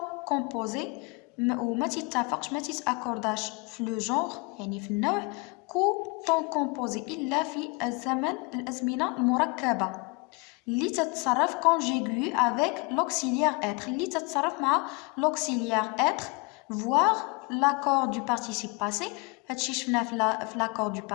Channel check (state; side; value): quieter; right; 28.5 dB